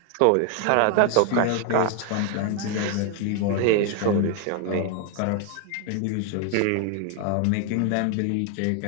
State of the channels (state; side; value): different; both; correlation 0.00